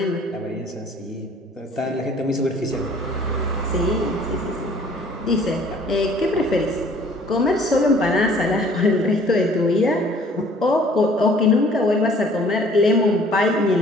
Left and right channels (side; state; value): both; normal; correlation 0.55